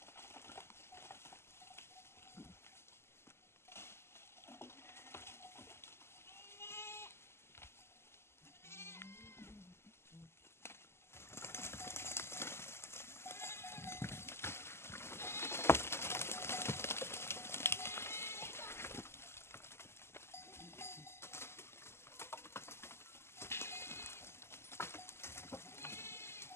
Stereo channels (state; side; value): late; right; 0.12 ms